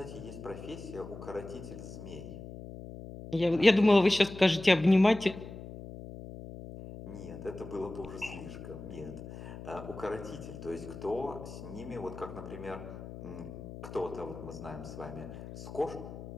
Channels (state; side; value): noise; left; hum, 12 dB below the sound